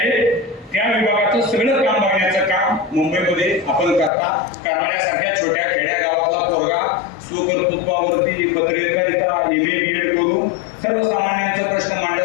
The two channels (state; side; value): drops out; right; at 4.1 s